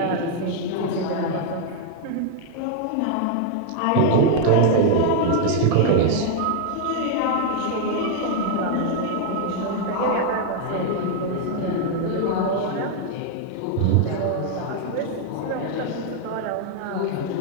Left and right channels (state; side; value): different; both; correlation 0.00